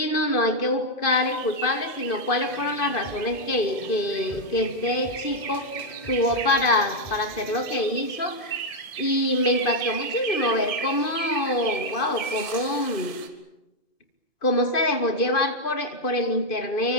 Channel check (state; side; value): late; right; 1.7 ms